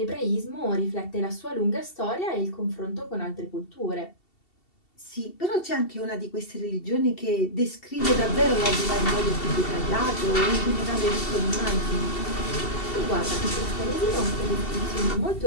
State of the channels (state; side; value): late; right; 2.7 ms